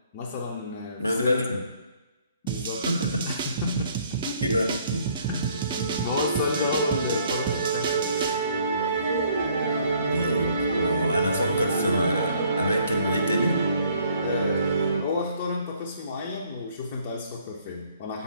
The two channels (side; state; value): both; inverted; correlation -0.62